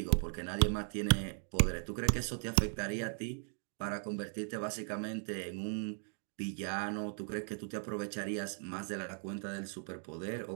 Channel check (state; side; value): silent; left; 53 dB below the other